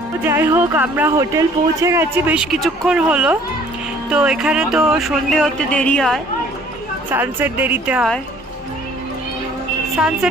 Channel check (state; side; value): normal; both; correlation 0.55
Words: যাই হোক, আমরা হোটেল পৌঁছে গেছি, বেশ কিছুক্ষণ হলো। তো এখানে তো সন্ধে হতে দেরি হয়, সানসেট দেরিতে হয়।